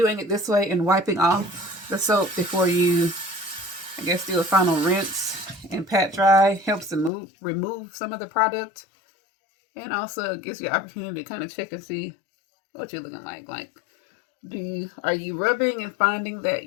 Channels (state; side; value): drops out; right; at 7.1 s